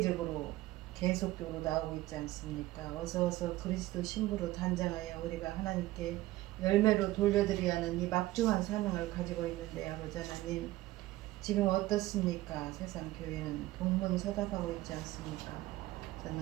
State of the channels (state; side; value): quieter; left; 17.0 dB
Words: 계속적으로 나오고 있지 않습니까? 어서 그리스도 신부로 단장하여 우리가 하나님께 열매로 돌려드려야 하는 이 막중한 사명을 가지고 있는데 아버지 하나님 지금 어떻습니까? 세상 교회는 동문서답하고 있지 않습니까?